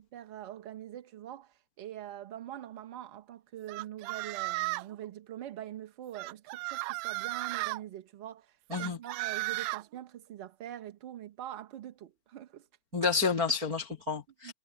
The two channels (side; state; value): left; late; 4.4 ms